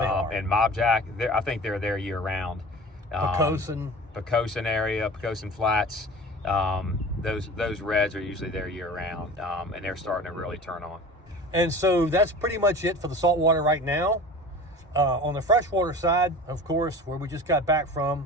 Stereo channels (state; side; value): normal; both; correlation 0.38